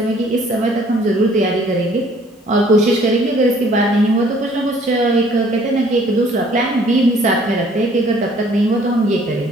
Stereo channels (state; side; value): normal; both; correlation 0.58